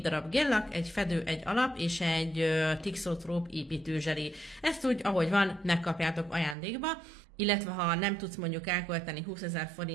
darab géllak, egy fedő, egy alap és egy Thixotrope építőzseli. Ezt úgy, ahogy van, megkapjátok ajándékba, illetve ha nem tudsz mondjuk elkölteni 20 000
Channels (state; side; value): drops out; left; at 6.6 s